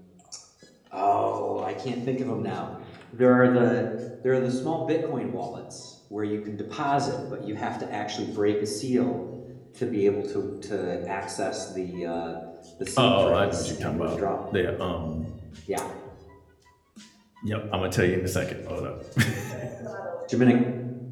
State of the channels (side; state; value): both; identical; correlation 1.00